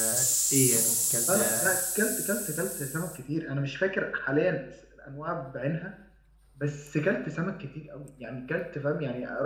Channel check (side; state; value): both; identical; correlation 1.00